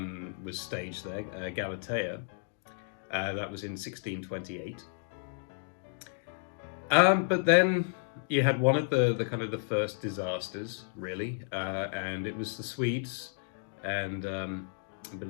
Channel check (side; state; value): right; silent; digital silence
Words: was staged there, Galatea. That was in 1628. But then you had one of the kind of the first disasters, really, and it was the Swedes and a bit